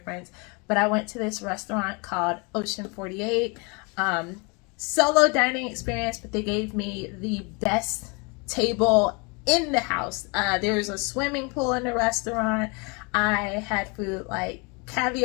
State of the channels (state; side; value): quieter; right; 30.5 dB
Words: But I went to this restaurant called Ocean 48. Solo dining experience, but they gave me the best table in the house. There was a swimming pool in the restaurant. I had food like